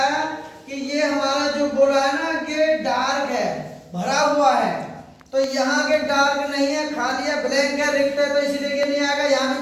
कि ये हमारा जो गोला है ना, ये डार्क है, भरा हुआ है। तो यहाँ के डार्क नहीं है, खाली है, ब्लैंक है, रिक्त है, तो इसलिए ये नहीं आएगा। यहाँ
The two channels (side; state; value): both; identical; correlation 1.00